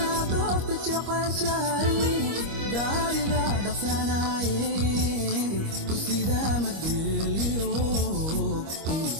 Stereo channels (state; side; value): late; left; 25 ms